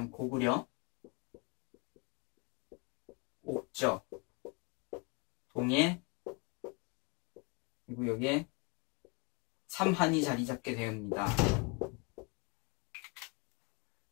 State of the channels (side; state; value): right; quieter; 30.4 dB